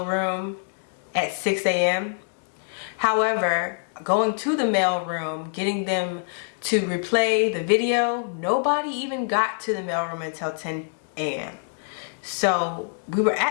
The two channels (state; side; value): silent; right; digital silence